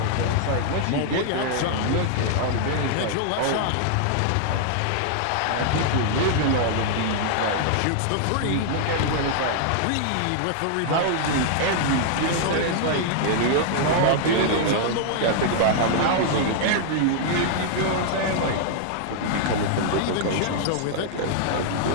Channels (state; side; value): different; both; correlation -0.01